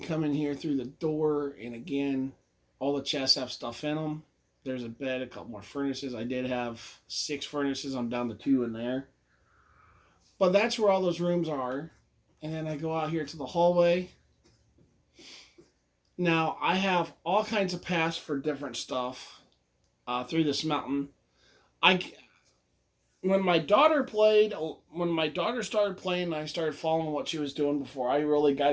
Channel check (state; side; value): identical; both; correlation 1.00